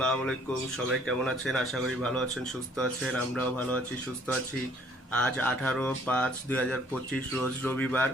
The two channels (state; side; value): normal; both; correlation 0.60